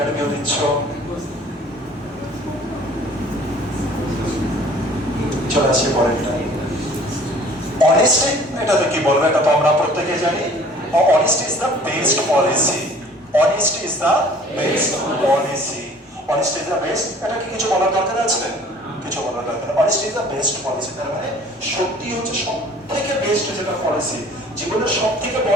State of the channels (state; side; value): normal; both; correlation 0.51